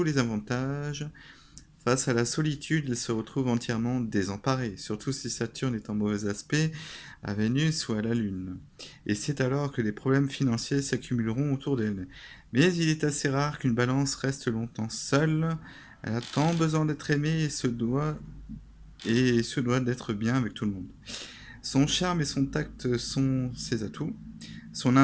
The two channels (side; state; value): both; identical; correlation 1.00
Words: les avantages. Face à la solitude, elle se retrouve entièrement désemparée, surtout si Saturne est en mauvais aspect à Vénus ou à la Lune. Et c'est alors que les problèmes financiers s'accumuleront autour d'elle. Mais il est assez rare qu'une balance reste longtemps seule. Elle a tant besoin d'être aimée et se doit d'être bien avec tout le monde. Son charme et son tact sont ses atouts, son